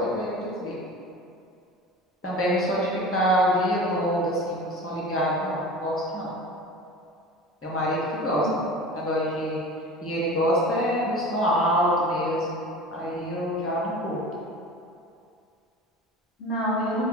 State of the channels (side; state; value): both; normal; correlation 0.36